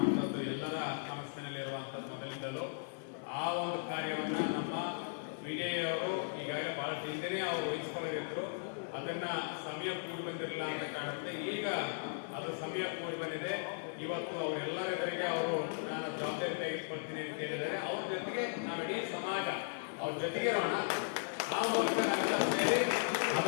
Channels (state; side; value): silent; right; digital silence